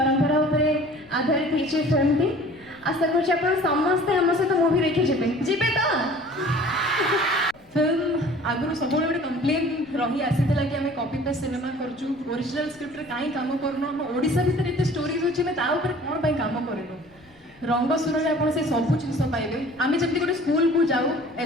उपरे आधारित होती फिल्म टी आशा कर समस्ते आम सहित मूवी देखी जीवे तो फिल्म आगु सब गोटे कंप्लेन रही आसीला कि आम कॉपी पेस्ट सिनेमा करचु ओरिजिनल स्क्रिप्ट कहीं काम करनु आम ओडिशा भितर एते स्टोरीज अछि मैं ता ऊपर कोन पई काम करनु रंगसुर रे आपण से सब जिंस पाइबे आमे जति गोटे स्कूल को जाऊ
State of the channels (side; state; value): left; noise; rumble, 29 dB below the sound